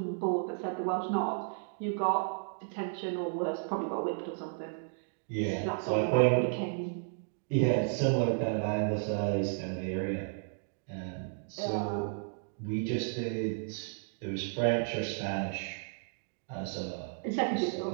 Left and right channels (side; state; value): left; silent; digital silence